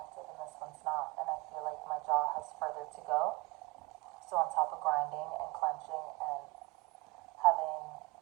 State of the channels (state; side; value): quieter; left; 25.2 dB